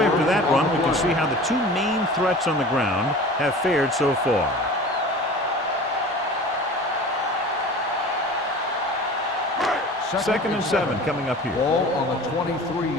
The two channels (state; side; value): normal; both; correlation 0.39